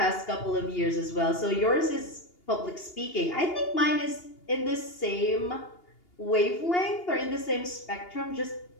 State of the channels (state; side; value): late; right; 2.8 ms